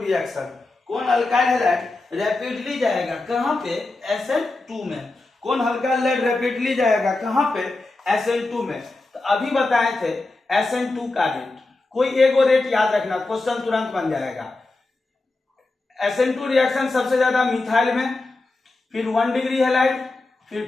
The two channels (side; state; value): right; quieter; 3.2 dB